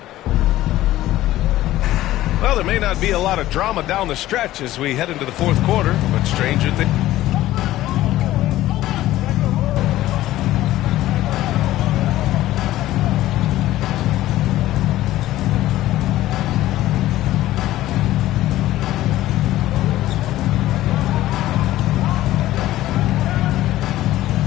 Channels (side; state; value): right; quieter; 15.1 dB